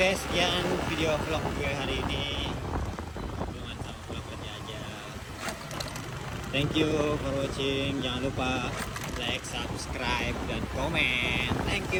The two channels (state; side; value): identical; both; correlation 1.00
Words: sekian video vlog gue hari ini. Hubungan sama vlog kerja aja. Thank you for watching. Jangan lupa like, subscribe, dan komen. Thank